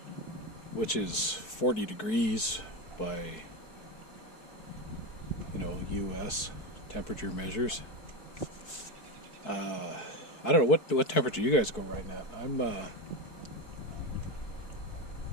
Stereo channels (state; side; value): late; right; 4.6 ms